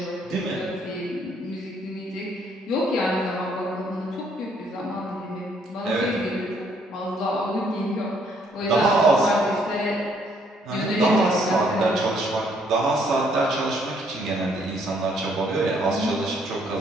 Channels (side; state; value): both; normal; correlation 0.67